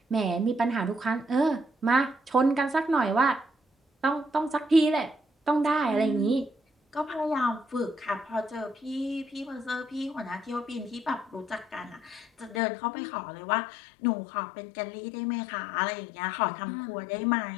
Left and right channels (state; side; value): drops out; right; at 12.6 s